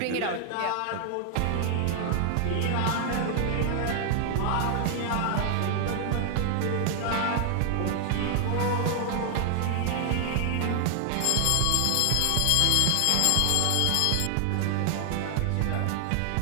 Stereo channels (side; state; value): both; different; correlation 0.00